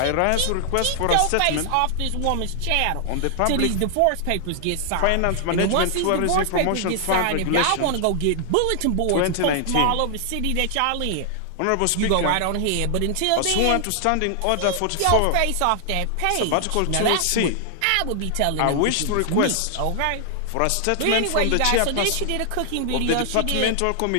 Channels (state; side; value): different; both; correlation 0.00